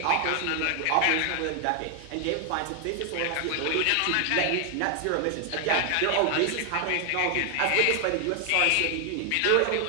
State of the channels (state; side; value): different; both; correlation 0.00